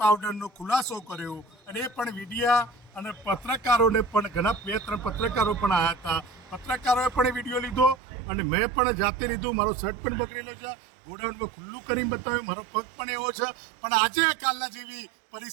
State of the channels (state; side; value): drops out; left; at 8.0 s